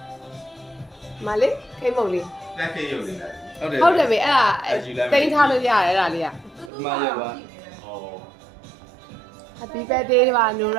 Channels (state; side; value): drops out; left; at 6.7 s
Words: မလေးခိမုံလေး တက်ခေရုပ်လေးဟုတ်တယ် ဟုတ်တယ်ပဲအဲ့ဒါတိန်းထားလို့ရတယ်အဲ့ဒါလေးက မရပါဩ Happy birthday ပါနူ